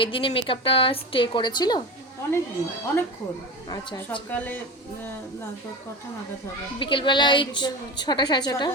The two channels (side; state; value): both; normal; correlation 0.26